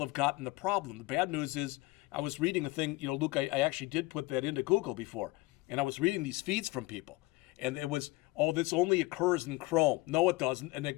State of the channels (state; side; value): quieter; right; 21.3 dB